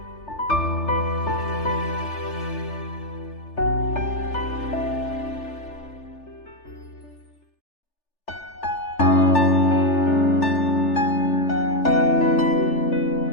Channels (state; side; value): late; right; 3.4 ms